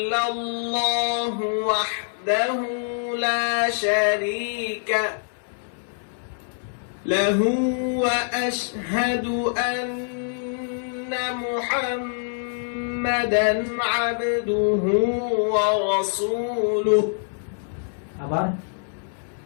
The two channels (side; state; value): right; silent; 62 dB below the other